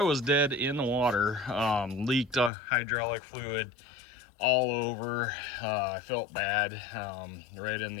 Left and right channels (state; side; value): drops out; right; at 2.5 s